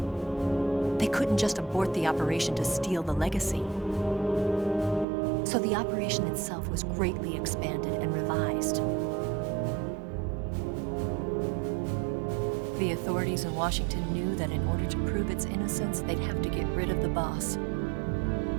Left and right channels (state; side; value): drops out; left; at 5.1 s